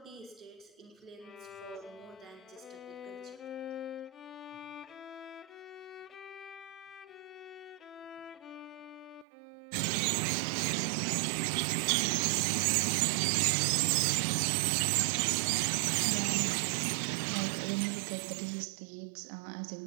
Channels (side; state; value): left; drops out; at 9.2 s